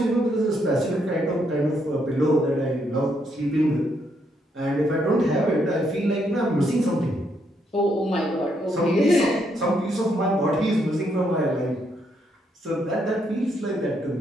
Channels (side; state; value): both; normal; correlation 0.75